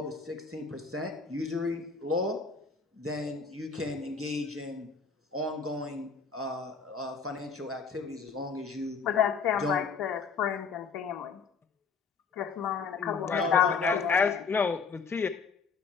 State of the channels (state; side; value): quieter; right; 5.3 dB